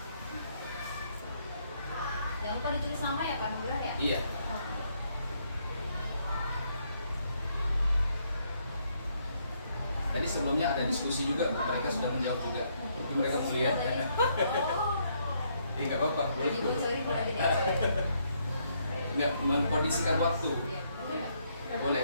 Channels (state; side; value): inverted; both; correlation -0.73